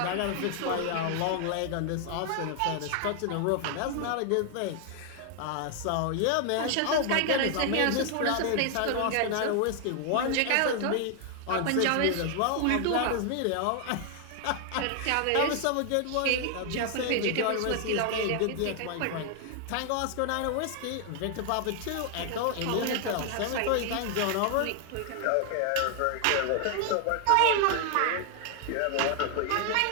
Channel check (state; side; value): different; both; correlation 0.00